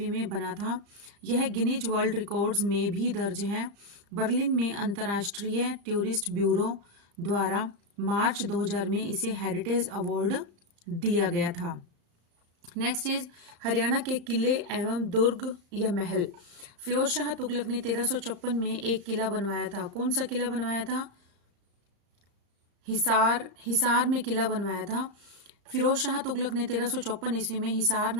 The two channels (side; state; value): left; late; 35 ms